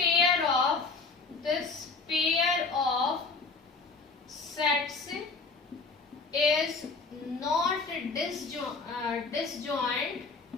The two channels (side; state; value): right; quieter; 4.2 dB